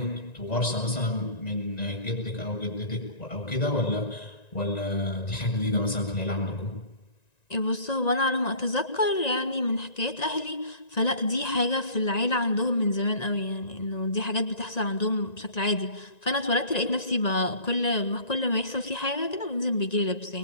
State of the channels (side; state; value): right; late; 1.9 ms